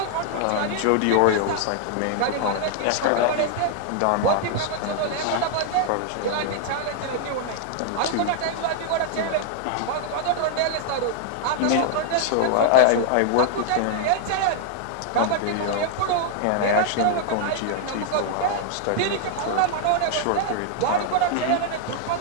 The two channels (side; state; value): both; different; correlation 0.00